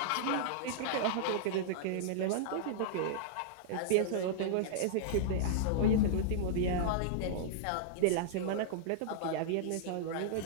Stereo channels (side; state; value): both; different; correlation -0.02